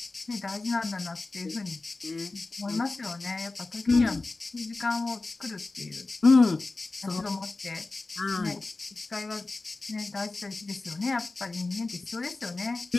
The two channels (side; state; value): right; quieter; 3.4 dB